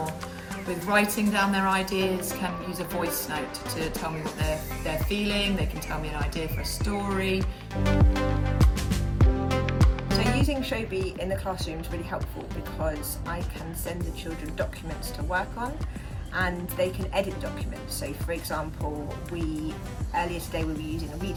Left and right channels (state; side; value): identical; both; correlation 1.00